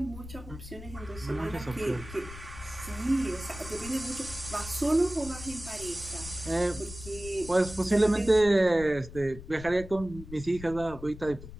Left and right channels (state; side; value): noise; left; rumble, 14 dB below the sound